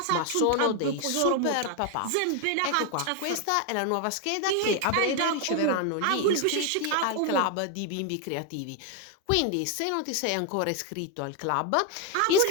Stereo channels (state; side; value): different; both; correlation 0.01